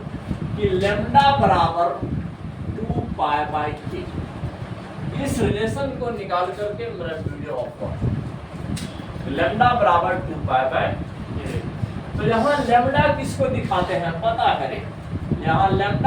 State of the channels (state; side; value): identical; both; correlation 1.00